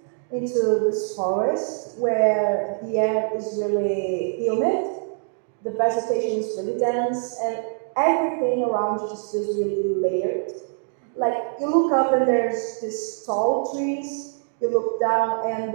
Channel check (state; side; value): silent; left; 63 dB below the other